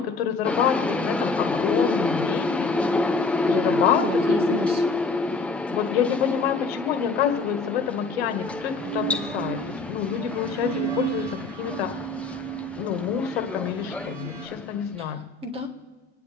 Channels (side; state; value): right; quieter; 4.2 dB